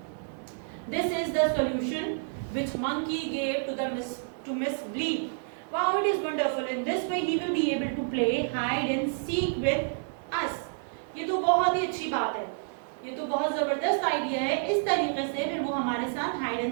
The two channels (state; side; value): silent; left; digital silence